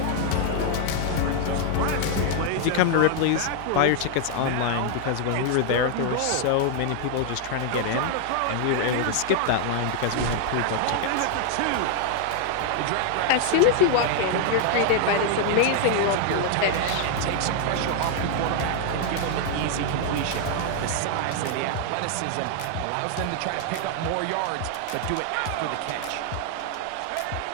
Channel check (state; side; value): different; both; correlation 0.00